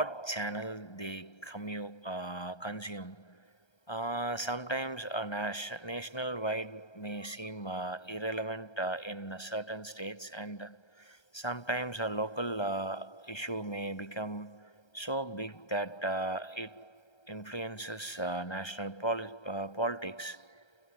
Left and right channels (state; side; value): late; right; 1.3 ms